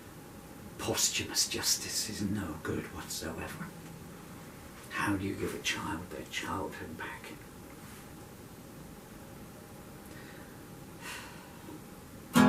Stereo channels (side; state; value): both; identical; correlation 1.00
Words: posthumous justice is no good whatsoever. How do you give a child their childhood back?